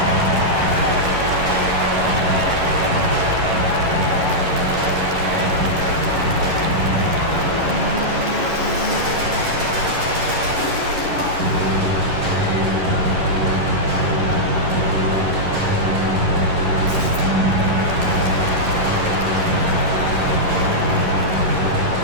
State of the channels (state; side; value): late; left; 11 ms